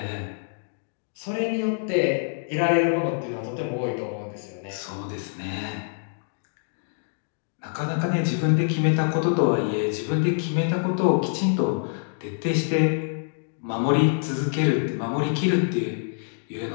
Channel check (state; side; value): silent; right; digital silence